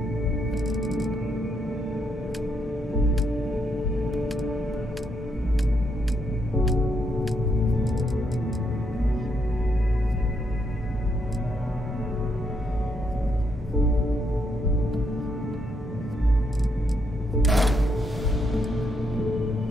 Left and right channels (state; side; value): normal; both; correlation 0.77